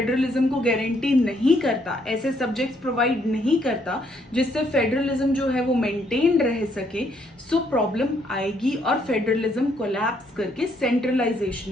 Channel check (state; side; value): normal; both; correlation 0.70